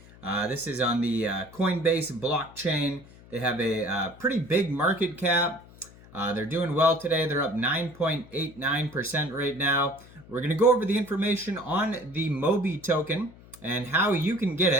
This is on the Coinbase blockchain. They have a pretty big market cap. They're doing well today. They're up 9.89% right now. We're going to go over the information on the MOBY token and how you can get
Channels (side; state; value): left; noise; hum, 22 dB below the sound